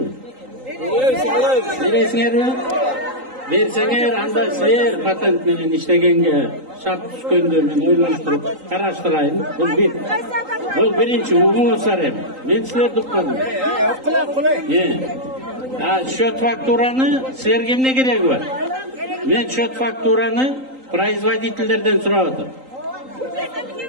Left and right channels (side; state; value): left; late; 3.8 ms